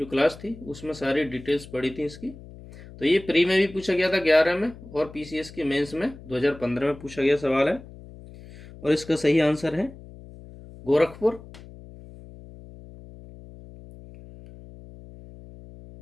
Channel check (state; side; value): noise; left; hum, 18 dB below the sound